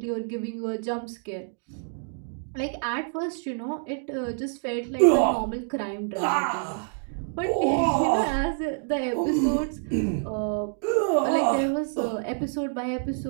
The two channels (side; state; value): left; silent; digital silence